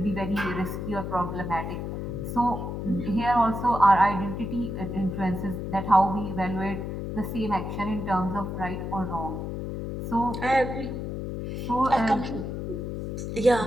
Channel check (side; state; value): left; noise; hum, 4 dB below the sound